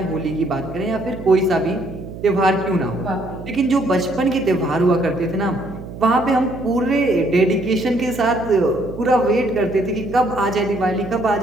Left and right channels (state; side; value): noise; right; hum, 12 dB below the sound